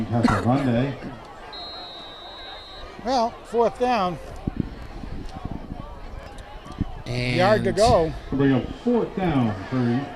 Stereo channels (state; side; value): identical; both; correlation 1.00